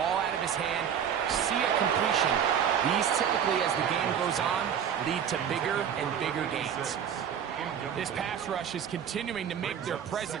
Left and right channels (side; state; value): left; quieter; 8.5 dB